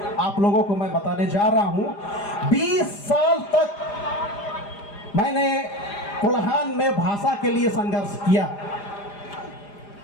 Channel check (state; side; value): late; right; 4.9 ms